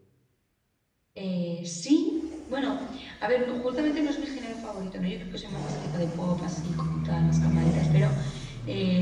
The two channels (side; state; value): both; identical; correlation 1.00